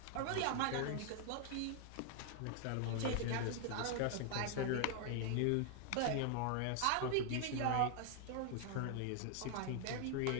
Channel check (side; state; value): both; different; correlation 0.00